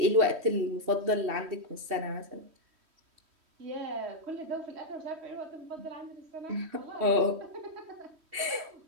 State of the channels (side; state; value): left; late; 3.1 ms